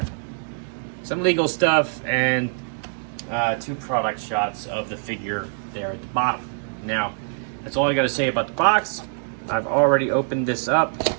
some legal stuff and two product shots of the figure there at the bottom. Now, that's all I got to say about the box. I've already opened this up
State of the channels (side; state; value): left; silent; digital silence